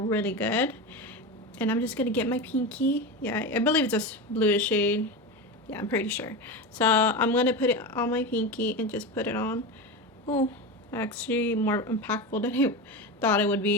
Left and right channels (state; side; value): normal; both; correlation 0.21